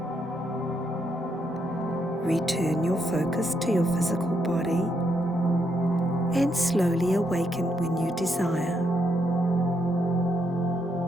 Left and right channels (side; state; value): both; normal; correlation 0.77